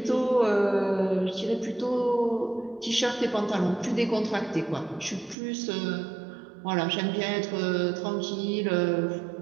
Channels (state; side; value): drops out; left; at 5.4 s